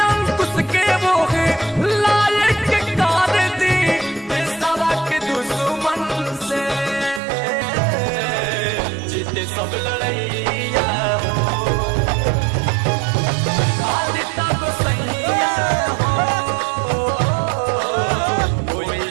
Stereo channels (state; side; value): drops out; left; at 7.2 s